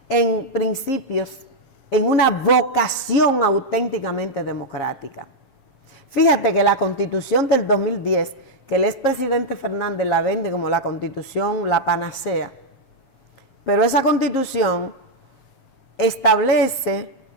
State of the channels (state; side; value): late; right; 7.4 ms